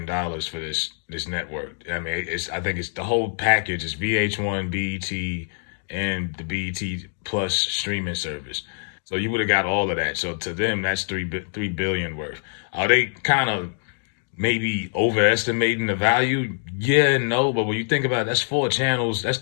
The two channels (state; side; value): silent; right; digital silence